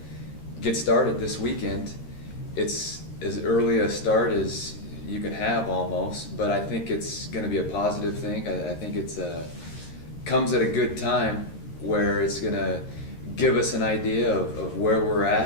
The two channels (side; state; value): right; late; 13 ms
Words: get started this weekend. It's as early a start as you can have almost, but I think it's going to be a positive thing. I think it's comes at a good time where it's going to give us an idea of where we're